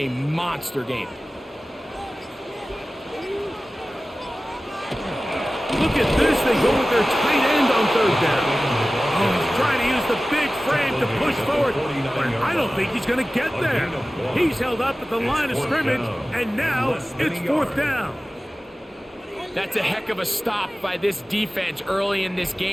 monster game. Look at this. They go with their tight end on third down. Oh, he's trying to use the big frame to push forward, but I don't think he's going to get there. He's held up at the line of scrimmage, and now it's fourth down. That's a heck of a stop by this defense early in this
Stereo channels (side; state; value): both; normal; correlation 0.96